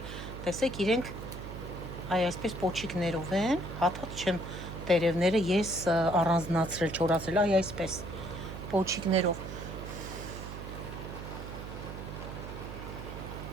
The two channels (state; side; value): noise; right; hum, 9 dB below the sound